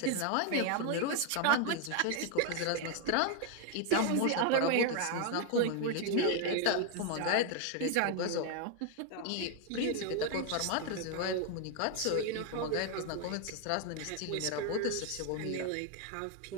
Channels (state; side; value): different; both; correlation 0.01